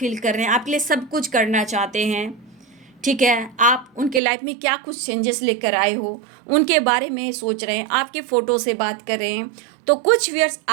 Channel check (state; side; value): drops out; left; at 4.2 s